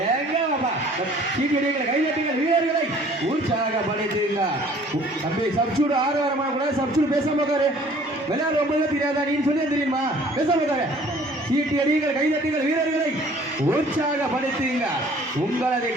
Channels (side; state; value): both; normal; correlation 0.54